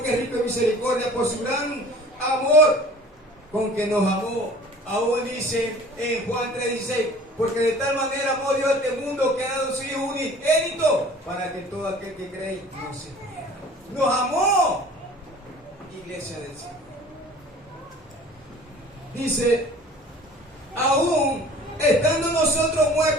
que es rico en misericordia, por su gran amor con que nos amó. Aún dice en Juan 3:16, porque de tal manera amó Dios a este mundo que ha dado su Hijo unigénito para que todo aquel que cree no se pierda. Nos amó, iglesia del Señor. Dice, aún estando nosotros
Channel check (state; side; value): normal; both; correlation 0.46